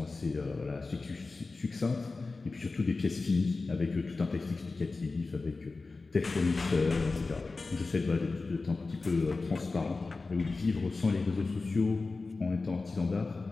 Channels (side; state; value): right; quieter; 3.8 dB